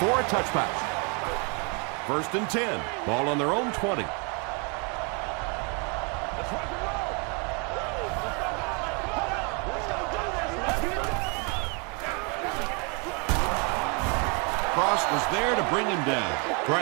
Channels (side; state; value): left; quieter; 34.3 dB